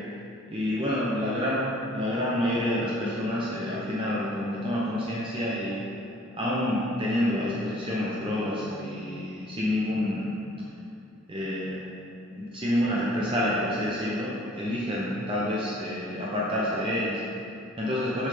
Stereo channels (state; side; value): normal; both; correlation 0.53